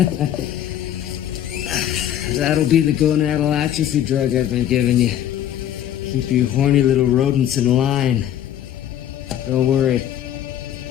That'll be the gonadal atrophy drug I've been giving you. Keep you horny little rodents in line. Don't worry.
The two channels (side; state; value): right; quieter; 11.0 dB